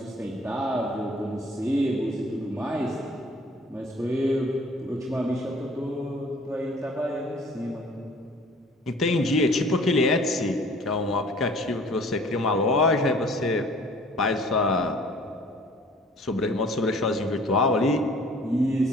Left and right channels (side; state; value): both; normal; correlation 0.52